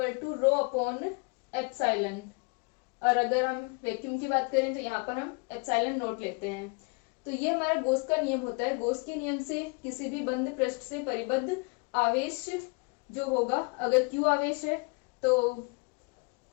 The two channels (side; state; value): right; quieter; 31.7 dB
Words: to rho upon epsilon. और अगर हम वैक्यूम की बात करें तो यहाँ पर हम एप्सिलॉन नोट लेते हैं। तो ये हमारा गॉस का नियम होता है। गॉस के नियम से किसी भी बंद पृष्ठ से परिबद्ध आवेश जो होगा, अगर Q आवेश है तो